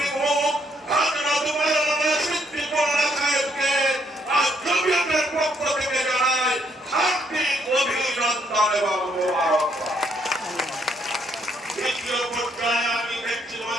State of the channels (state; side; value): normal; both; correlation 0.71